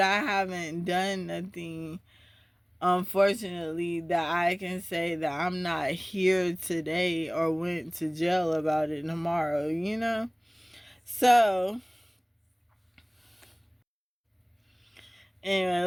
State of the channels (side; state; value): both; identical; correlation 1.00